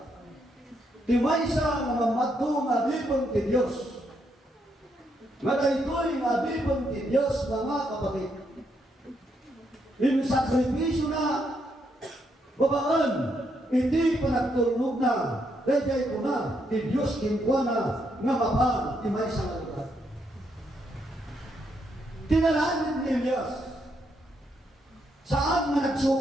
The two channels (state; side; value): normal; both; correlation 0.77